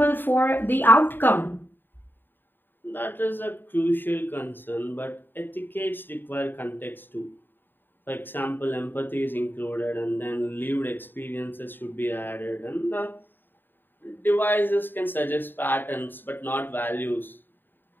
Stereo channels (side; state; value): right; late; 0.094 ms